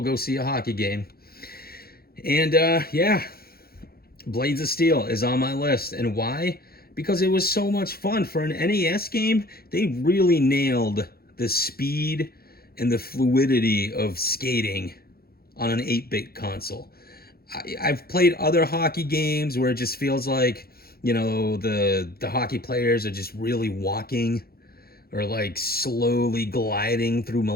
go see a hockey game. And yeah, Blades of Steel is on my list. And why? Because it was so much fun. For an NES game, they really nailed the speed and the fluidity of skating on an 8-bit console. I've played other hockey games where it just feels like, the hockey players are just really walking or like slowly gliding through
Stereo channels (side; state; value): right; late; 0.44 ms